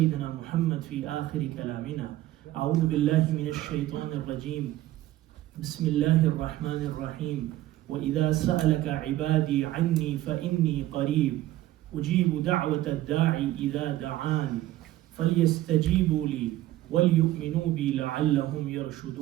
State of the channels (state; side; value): quieter; left; 15.1 dB